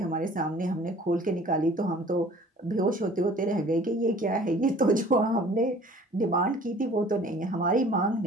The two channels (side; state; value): both; normal; correlation 0.50